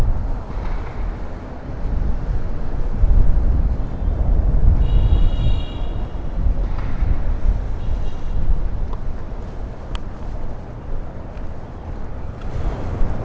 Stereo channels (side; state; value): both; identical; correlation 1.00